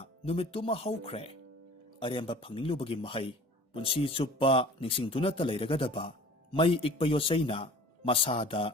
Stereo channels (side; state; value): both; normal; correlation 0.44